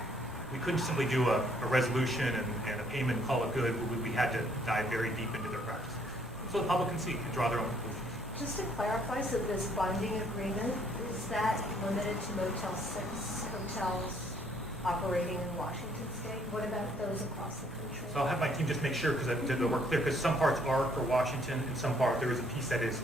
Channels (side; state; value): both; normal; correlation 0.65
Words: we couldn't simply do a resolution and a payment and call it good. We had to dive very deep into their practice. So the public can see and draw their own conclusions. Just to clarify, so this bonding agreement, is that limited to Motel 6 hotels operating in Washington State? What about those across the country? So I'll have my team just make sure, because we're clear, because some parts are for Washington, and some part, there is a piece that is